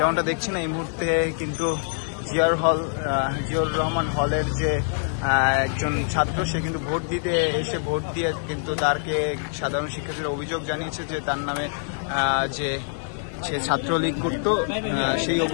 দেখছেন এই মুহূর্তে কিন্তু জিয়াউর রহমান হলের যে একজন ছাত্র, সে কিন্তু ভোট দিতে এসে ভোট দিয়ে কিন্তু তারকে সাধারণ শিক্ষার্থীরা অভিযোগ জানিয়েছে যে তার নামে যে সে ছাত্রলীগ করত, সেই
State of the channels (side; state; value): right; silent; digital silence